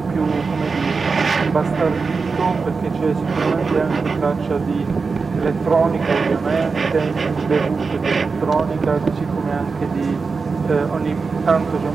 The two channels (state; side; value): quieter; left; 4.7 dB